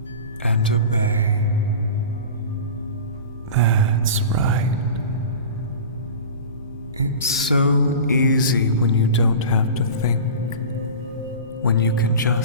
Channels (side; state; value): both; inverted; correlation -0.33